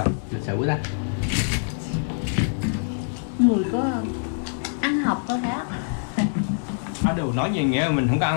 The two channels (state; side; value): silent; right; digital silence